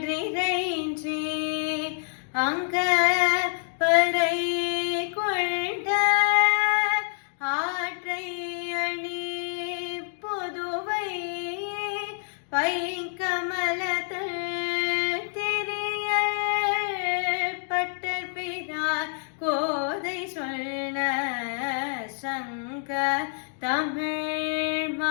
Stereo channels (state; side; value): silent; right; 60 dB below the other